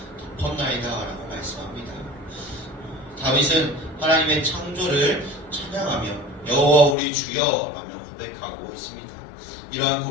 덮었나이다 라고 말씀합니다. 다윗은 하나님의 창조를 찬양하며 여호와 우리 주여 라며 고백하고 있습니다. 이러한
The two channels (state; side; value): drops out; right; at 7.0 s